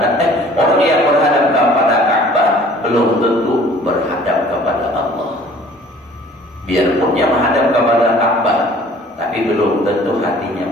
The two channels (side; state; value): both; normal; correlation 0.51